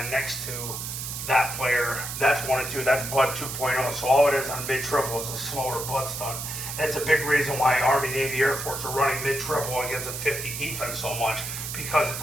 next to that player. That's 1 and 2. That's blood 2.0. So all it is on mid-triple is a slower blood stun. And it's a big reason why Army, Navy, Air Force are running mid-triple against a 50 defense so much, because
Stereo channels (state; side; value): noise; right; hiss, 6 dB below the sound